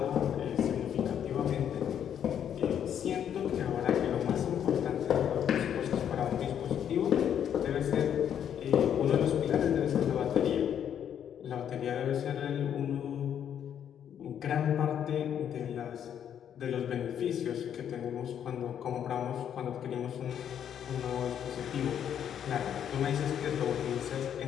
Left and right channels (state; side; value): quieter; right; 9.2 dB